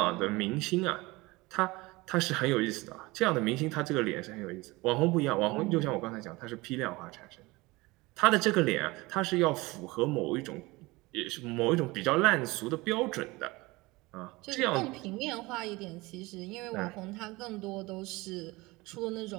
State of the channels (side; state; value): left; quieter; 22.2 dB